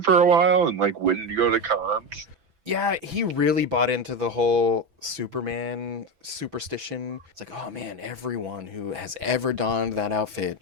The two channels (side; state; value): left; late; 6.1 ms